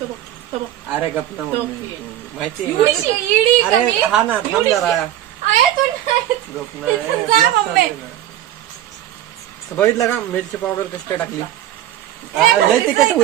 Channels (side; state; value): left; quieter; 12.5 dB